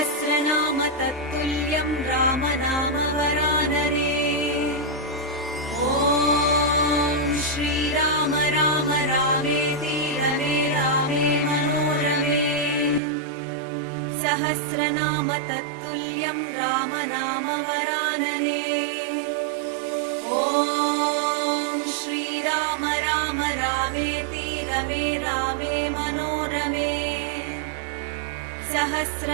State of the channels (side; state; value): left; drops out; at 13.0 s